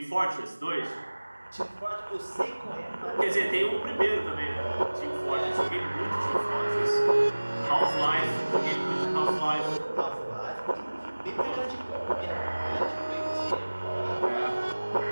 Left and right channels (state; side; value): inverted; both; correlation -1.00